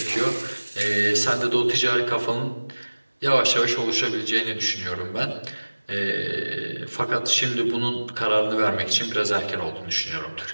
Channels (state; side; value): inverted; both; correlation -1.00